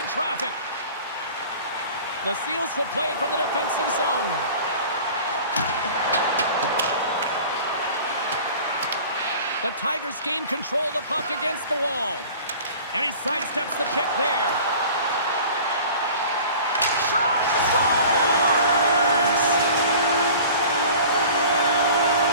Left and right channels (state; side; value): inverted; both; correlation -0.43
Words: traffic. The Seals will play it from the defensive zone. The Tigers gain control of the puck against the wall. And he sidesteps the check there. Shot! Scores!